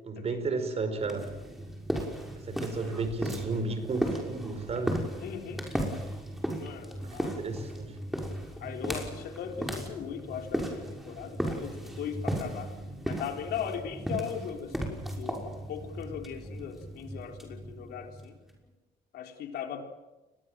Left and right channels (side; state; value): both; normal; correlation 0.62